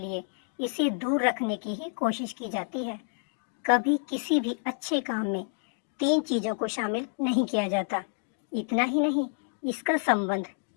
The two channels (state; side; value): silent; right; 59 dB below the other